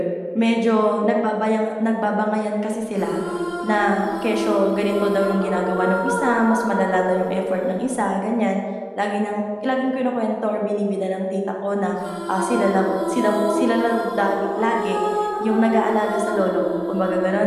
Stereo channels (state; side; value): identical; both; correlation 1.00